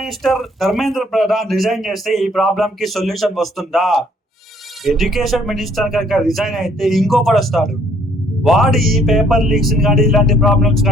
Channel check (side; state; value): both; normal; correlation 0.63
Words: Dharmendra Pradhan resign చేస్తే ఈ problem కి solution వస్తుందా? ఎడ్యుకేషన్ మినిస్టర్ కనుక రిజైన్ అయితే ఇంకొకటి వస్తాడు, వాడు ఈ పేపర్ లీక్స్ కానీ ఇలాంటి ప్రాబ్లమ్స్